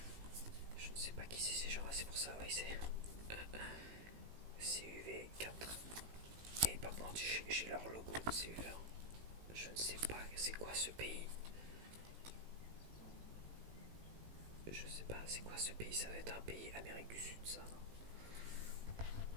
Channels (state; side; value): late; left; 18 ms